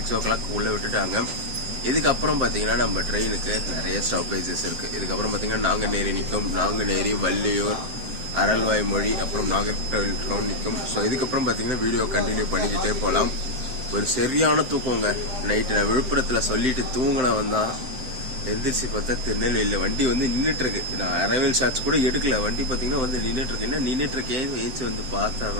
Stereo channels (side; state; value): left; late; 7.7 ms